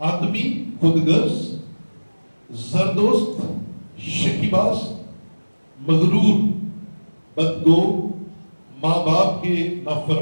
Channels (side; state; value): both; inverted; correlation -1.00